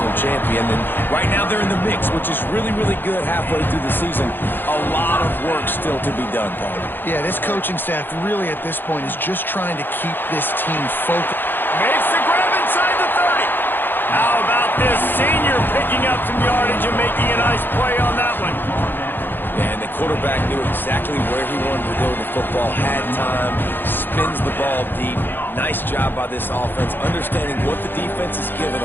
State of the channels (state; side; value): late; right; 0.096 ms